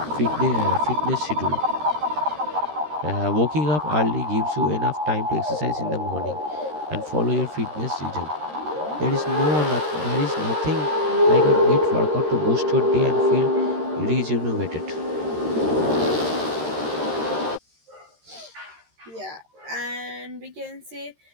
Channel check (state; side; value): late; left; 13 ms